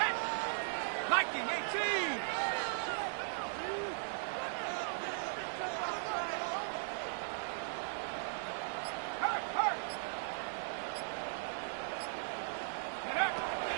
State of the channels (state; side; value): silent; left; 52 dB below the other